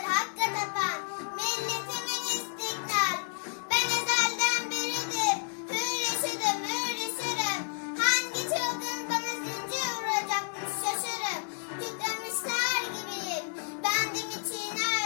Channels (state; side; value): silent; right; 57 dB below the other